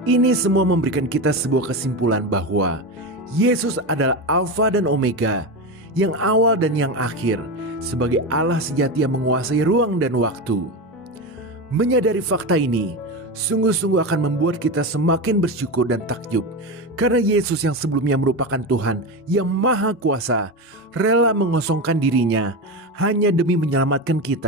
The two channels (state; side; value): normal; both; correlation 0.19